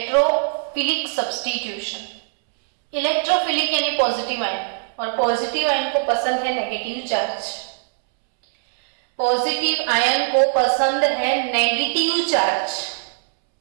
substitution. इलेक्ट्रोफिलिक यानी पॉजिटिव आयन, और पॉजिटिव आयन को पसंद है नेगेटिव चार्ज। पॉजिटिव आयन को पसंद है नेगेटिव चार्ज।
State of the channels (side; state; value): left; silent; 65 dB below the other